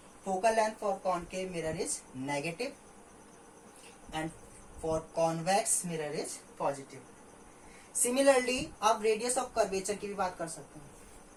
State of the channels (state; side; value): identical; both; correlation 1.00